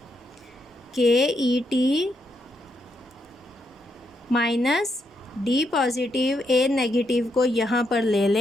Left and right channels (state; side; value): normal; both; correlation 0.79